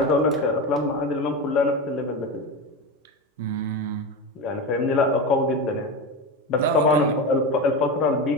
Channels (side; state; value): both; normal; correlation 0.21